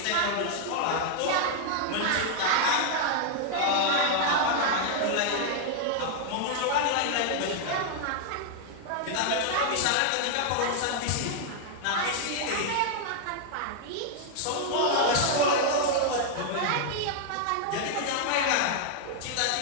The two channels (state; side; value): different; both; correlation 0.00